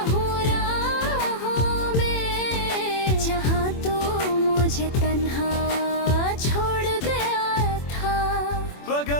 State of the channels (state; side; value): late; right; 24 ms